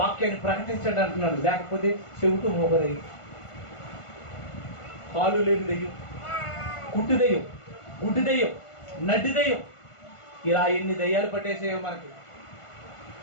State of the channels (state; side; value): late; right; 1.5 ms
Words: ప్రకటించండి అంటున్నాను. లేకపోతే చెవిటూ మోగదయ్యం, కాలు లేని దెయ్యం, కుట్టు దెయ్యం, గుడ్డి దెయ్యం, నడ్డి దెయ్యం, ఇలా ఎన్ని దెయ్యాలు పట్టేసేయో